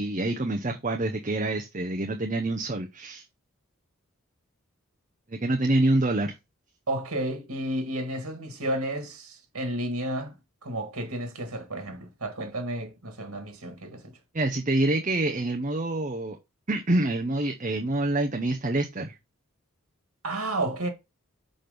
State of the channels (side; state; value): both; normal; correlation 0.53